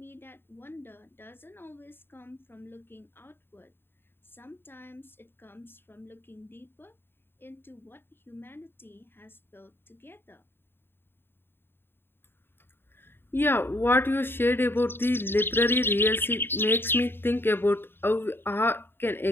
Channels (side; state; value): right; late; 0.11 ms